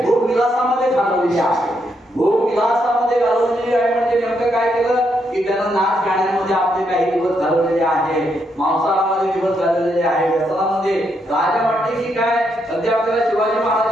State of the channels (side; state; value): both; normal; correlation 0.78